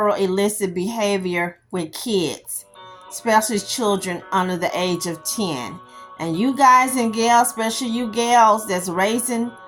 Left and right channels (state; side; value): identical; both; correlation 1.00